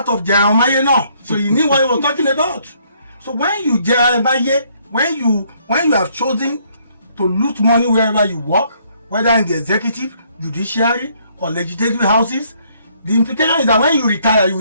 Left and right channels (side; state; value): both; inverted; correlation -0.67